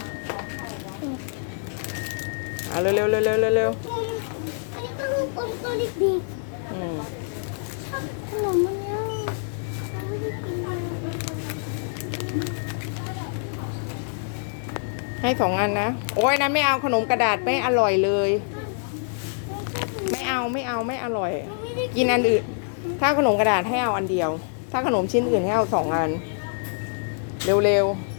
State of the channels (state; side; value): silent; right; digital silence